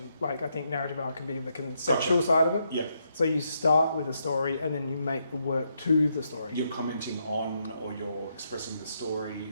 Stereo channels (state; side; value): inverted; both; correlation -0.79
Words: I think narrative art can be the conceptual side of it. Yeah. So you start with a story and then you make the work to the story. You're commenting on, or you're expressing the story,